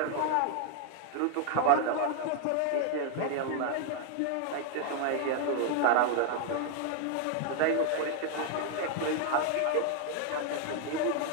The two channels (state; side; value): different; both; correlation 0.00